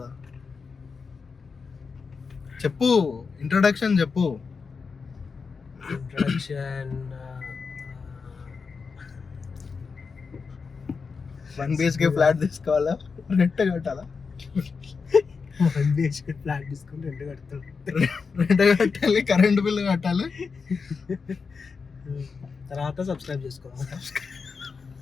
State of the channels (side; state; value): right; quieter; 5.1 dB